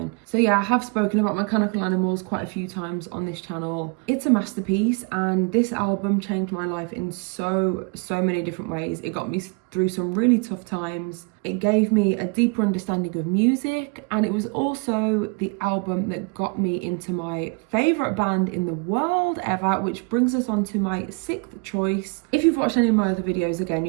So yeah, I have spoken about Mechanical Animals quite a few times on this channel. It's a masterpiece, and this album changed my life in so many different ways. It got me through some really tough times. It gave me a deeper understanding of music, and it was also the album that got me into my favourite band in the world ever, which brings us on to my sixth choice. If you've watched any of my other videos, again,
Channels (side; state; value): left; quieter; 32.4 dB